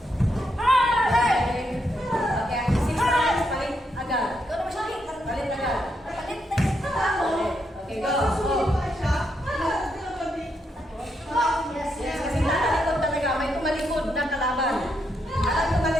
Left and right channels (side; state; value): both; normal; correlation 0.79